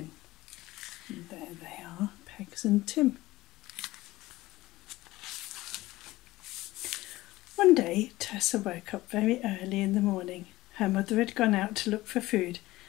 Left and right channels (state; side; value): quieter; right; 18.1 dB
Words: And there they are, Pegs and Tim. One day, Tessa woke up very early in the morning. Her mother had gone out to look for food,